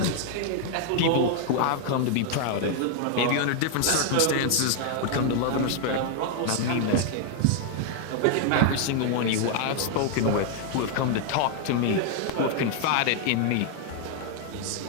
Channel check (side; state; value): both; different; correlation 0.00